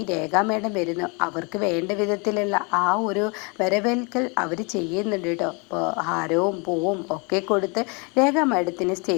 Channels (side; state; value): right; quieter; 31.4 dB